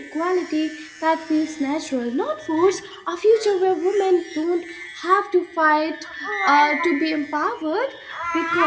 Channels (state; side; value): identical; both; correlation 1.00